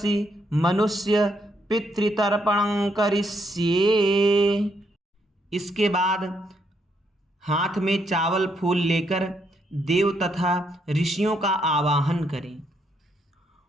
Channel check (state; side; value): normal; both; correlation 0.75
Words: मनुष्य पितृतर्पणं करिष्ये। इसके बाद हाथ में चावल फूल लेकर देव तथा ऋषियों का आवाहन करें।